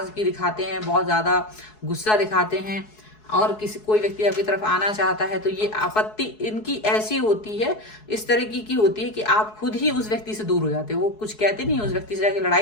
दिखाते हैं, बहुत ज्यादा गुस्सा दिखाते हैं। और कोई व्यक्ति आपकी तरफ आना चाहता है तो ये आपत्ति इनकी ऐसी होती है, इस तरह की होती है कि आप खुद ही उस व्यक्ति से दूर हो जाते हो। वो कुछ कहते नहीं, उस व्यक्ति से जाके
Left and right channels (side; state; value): right; late; 4.7 ms